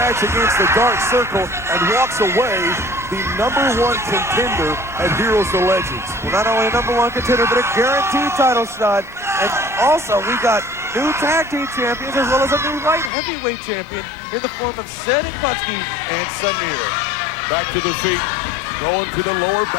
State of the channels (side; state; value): right; drops out; at 13.1 s